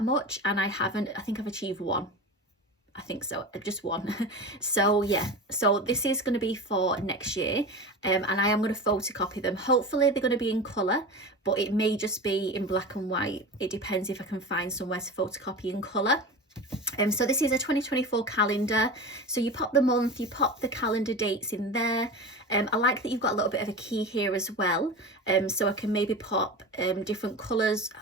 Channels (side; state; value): both; normal; correlation 0.29